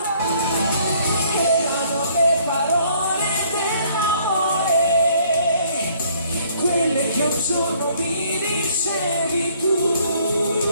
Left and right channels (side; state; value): both; inverted; correlation -0.62